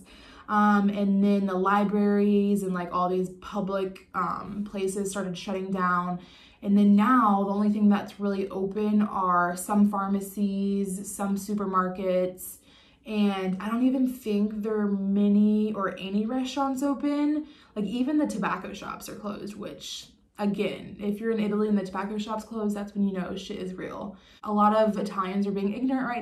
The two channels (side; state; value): both; identical; correlation 1.00